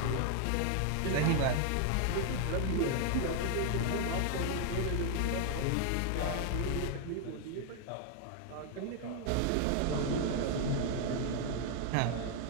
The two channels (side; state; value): both; different; correlation 0.00